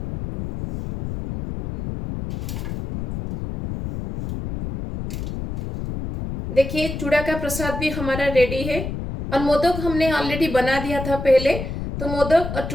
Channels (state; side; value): noise; left; rumble, 6 dB below the sound